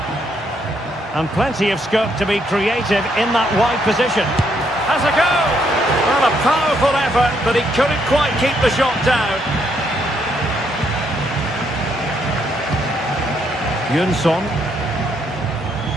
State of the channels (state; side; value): normal; both; correlation 0.73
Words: And plenty of scope to be creative in that wide position. Has a go! Well, a powerful effort, but he couldn't quite keep the shot down. Jönsson.